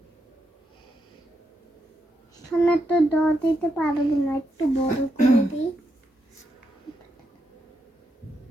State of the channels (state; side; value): normal; both; correlation 0.82